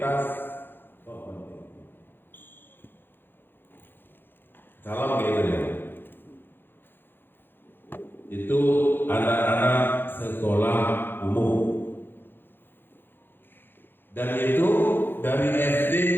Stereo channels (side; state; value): right; late; 0.10 ms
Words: salam gitu ya. Itu anak-anak sekolah umum. Dan itu dari SD,